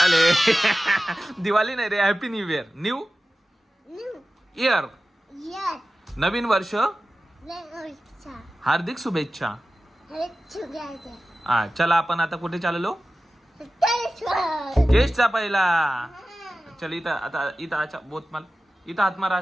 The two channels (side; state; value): both; normal; correlation 0.95